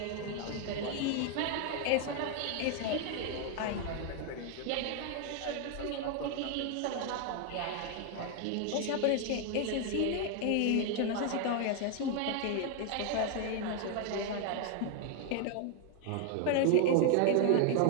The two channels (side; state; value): both; different; correlation 0.00